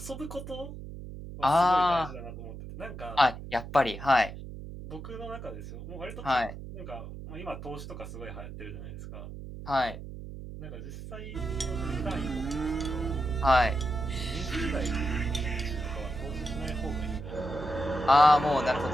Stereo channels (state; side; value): noise; right; hum, 11 dB below the sound